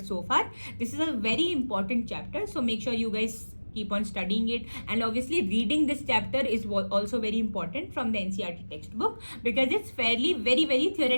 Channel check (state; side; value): inverted; both; correlation -1.00